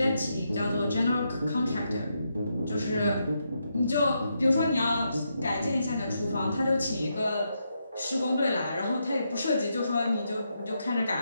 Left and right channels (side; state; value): both; inverted; correlation -0.82